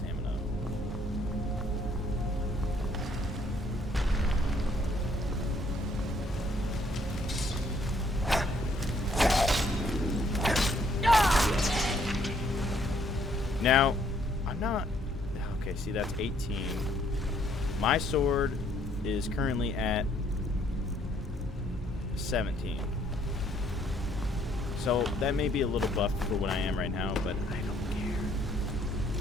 Now, I'm not... Okay, see, that's 18. My sword is currently at 17. So, that may be a little buff for what I am right now, but I don't care.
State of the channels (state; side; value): normal; both; correlation 0.66